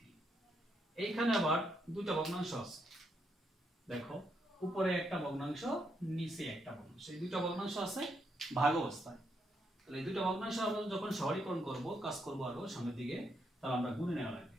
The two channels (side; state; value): both; normal; correlation 0.78